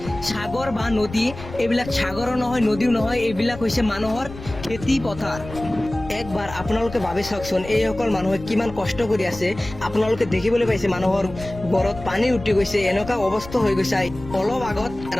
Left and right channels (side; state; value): left; noise; rumble, 14 dB below the sound